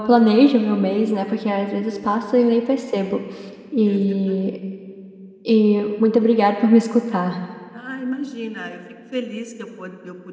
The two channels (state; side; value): identical; both; correlation 1.00